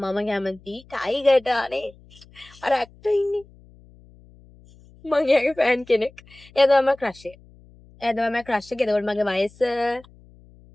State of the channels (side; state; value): left; noise; hum, 25 dB below the sound